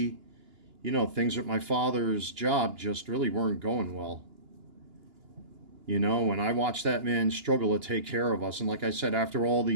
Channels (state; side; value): late; left; 2.9 ms